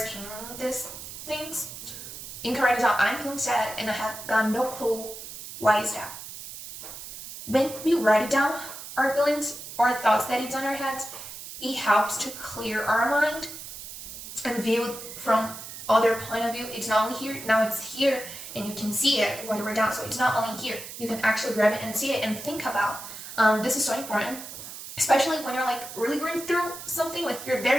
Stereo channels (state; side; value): noise; right; hiss, 11 dB below the sound